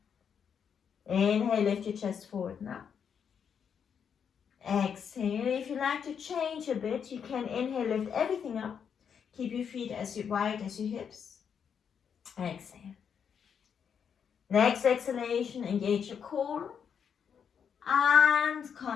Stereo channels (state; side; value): quieter; right; 7.3 dB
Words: Inhale, lift your chest forward now. Exhale. If you like to change a bit, you can inhale, lift everything up. Keep your feet as wide as your hips. Exhale. Next exhalation, engage your core. And